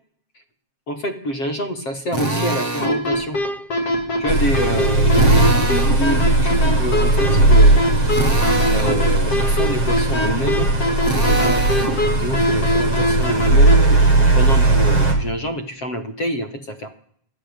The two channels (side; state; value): right; late; 7.6 ms